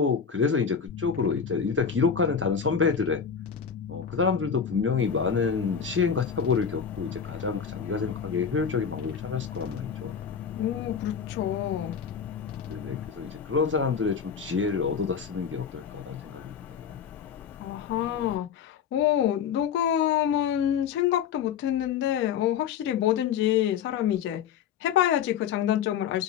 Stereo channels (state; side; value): quieter; right; 7.2 dB